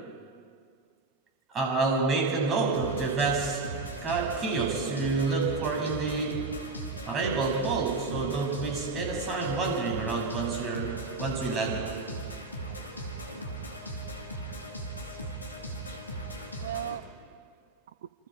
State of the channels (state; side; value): quieter; left; 3.5 dB